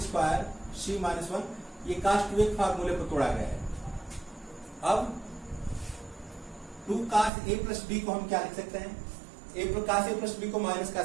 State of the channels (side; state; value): left; drops out; at 7.3 s